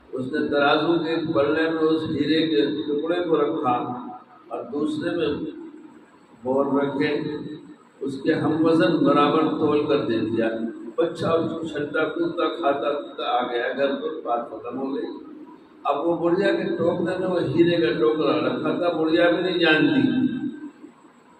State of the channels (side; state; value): both; identical; correlation 1.00